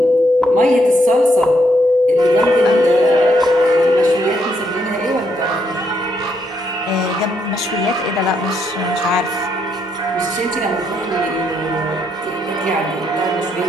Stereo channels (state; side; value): normal; both; correlation 0.75